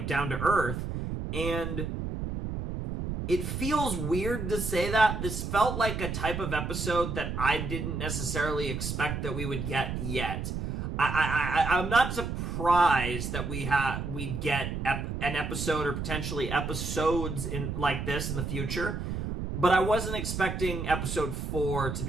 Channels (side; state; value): right; noise; rumble, 4 dB below the sound